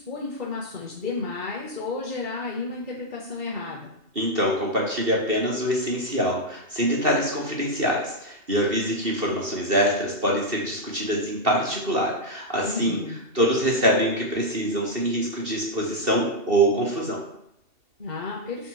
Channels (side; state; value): left; late; 2.7 ms